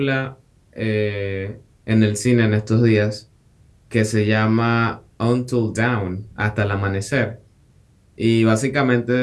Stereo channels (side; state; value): both; identical; correlation 1.00